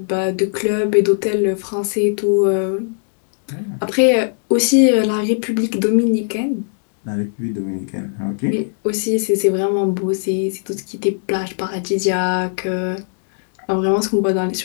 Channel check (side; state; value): right; silent; digital silence